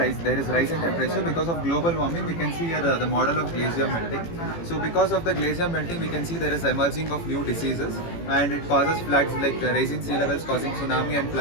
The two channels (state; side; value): late; right; 18 ms